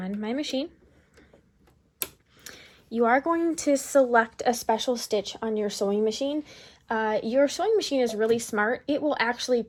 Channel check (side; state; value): both; identical; correlation 1.00